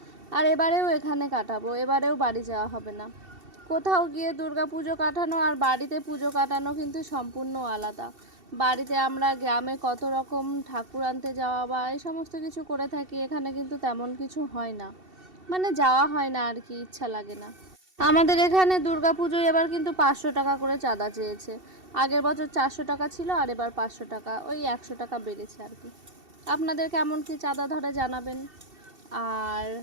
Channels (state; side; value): late; left; 2.7 ms